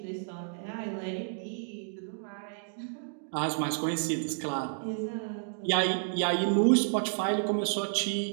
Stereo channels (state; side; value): silent; left; digital silence